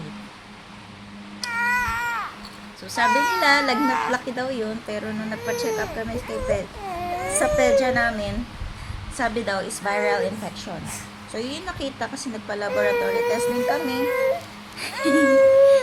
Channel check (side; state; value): both; identical; correlation 1.00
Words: So, sabi nila, lagnat laki daw yun. Pero nung nagpa-check up kami sa pedya namin, sabi daw is viral infection. So, yun nakita kasi nagpa-laboratory testing kami.